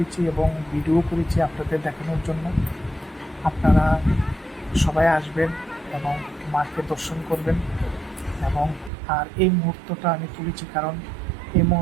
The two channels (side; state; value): left; drops out; at 8.9 s